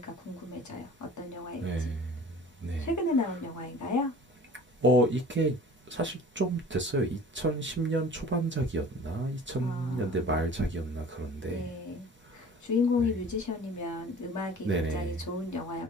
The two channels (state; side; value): normal; both; correlation 0.44